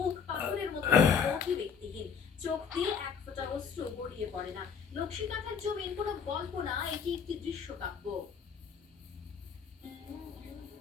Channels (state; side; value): quieter; right; 6.5 dB